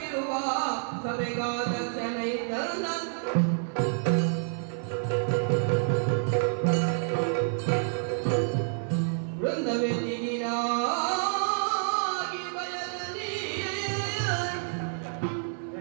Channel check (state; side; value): silent; left; 59 dB below the other